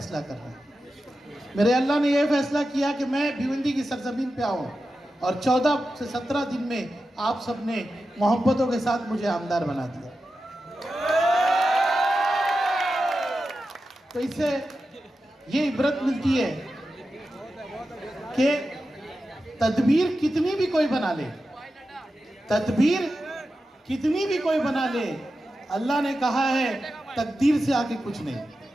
कर रहे हैं। मेरे अल्लाह ने यह फैसला किया कि मैं भिवंडी की सरजमीन पे आऊँ और 14 से 17 दिन में आप सबने मोहब्बतों के साथ मुझे आमदार बना दिया। तो इससे ये इबरत मिलती है कि तदबीर कितनी भी कोई बना ले, तदबीर कितनी भी कोई बना ले, अल्लाह ने कहा है तकदीर से आगे कुछ नहीं।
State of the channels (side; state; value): both; normal; correlation 0.91